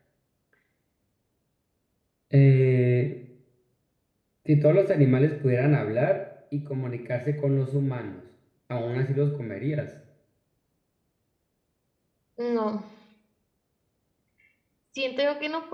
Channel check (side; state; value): both; identical; correlation 1.00